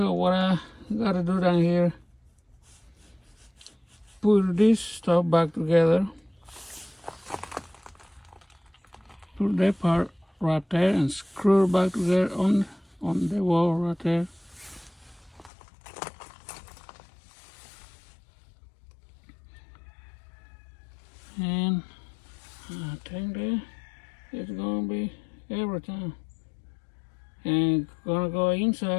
what I gotta do down here, put this stuff back together. Put that part right there and screw it back together on the wall right there. And I think that it's gonna be everything. And gonna go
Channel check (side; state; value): right; drops out; at 15.5 s